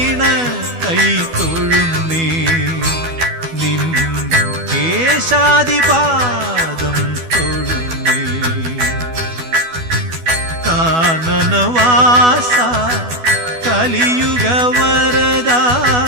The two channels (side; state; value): left; late; 12 ms